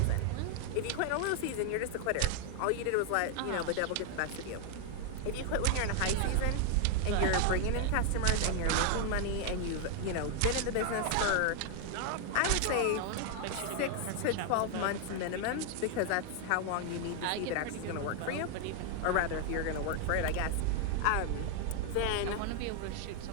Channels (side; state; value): both; different; correlation 0.00